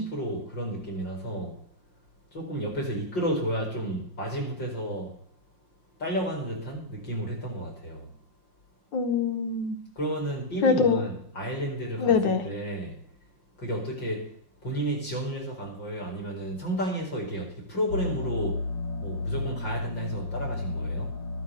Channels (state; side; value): late; right; 5.7 ms